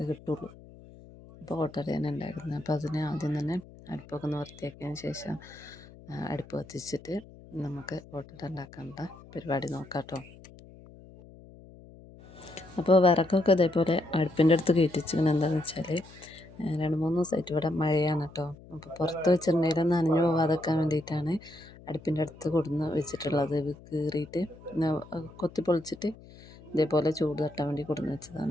കിട്ടുള്ളൂ. അപ്പോൾ ഓട്ടടയാണ് ഉണ്ടാക്കുന്നത്. അപ്പോൾ അതിന് ആദ്യം തന്നെ അടുപ്പൊക്കെ ഒന്ന് വൃത്തിയാക്കിയതിന് ശേഷം അടുപ്പ് കത്തിച്ചിട്ട് നമുക്ക് ഓട്ടട ഉണ്ടാക്കാനുള്ള പരിപാടി നോക്കാം കേട്ടോ. അപ്പോൾ വിറകൊക്കെ ഇതേപോലെ അടുപ്പിൻ്റെ അടുത്ത് കയറ്റിച്ചിങ്ങനെ എന്താണെന്ന് വെച്ചാൽ 2-3 ദിവസമായിട്ട് ഇവിടെ മഴയാണ് കേട്ടോ. അപ്പോൾ പുറത്ത് വെച്ചിട്ടുണ്ടെങ്കിൽ നനഞ്ഞു പോകാതെക്കാൻ വേണ്ടിയിട്ടാണ് അടുപ്പിൻ്റെ അടുത്ത് കൊടുന്ന് വെച്ചിട്ടുള്ളത്. ഇത് കീറിയിട്ട് കൊത്തി പൊളിച്ചിട്ട് ഇതേപോലെ ചൂട് തട്ടാൻ വേണ്ടി കൊടുന്ന്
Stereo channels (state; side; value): noise; left; hum, 20 dB below the sound